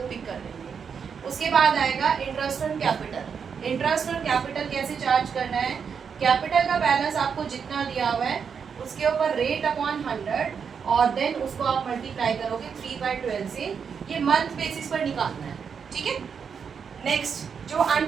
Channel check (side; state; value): left; quieter; 6.6 dB